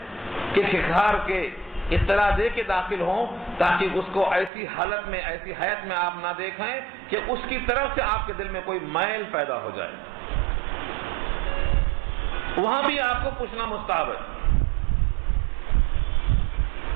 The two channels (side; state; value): left; drops out; at 4.5 s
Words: کہ کھکھار کے اطلاع دے کے داخل ہوں تاکہ اس کو ایسی حالت میں، ایسی حیات میں آپ نہ دیکھیں کہ اس کی طرف سے آپ کے دل میں کوئی میل پیدا ہو جائے. وہاں بھی آپ کو پوچھنا مستحب ہے.